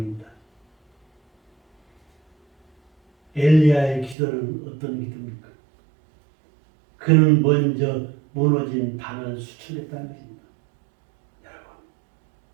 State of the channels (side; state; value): left; drops out; at 4.2 s